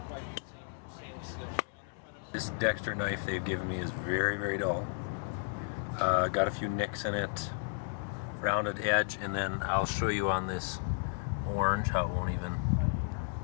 This Dexter knife they've given me is very, very dull. Got a few nicks in it, rounded edge, and then I'll show you on this orange how it won't even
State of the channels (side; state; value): right; silent; digital silence